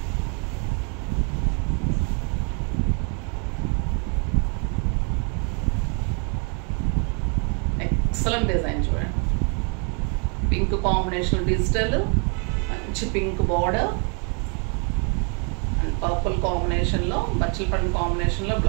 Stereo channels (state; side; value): quieter; left; 37.6 dB